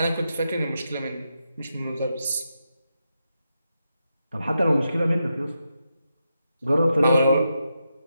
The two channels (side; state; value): both; inverted; correlation -0.86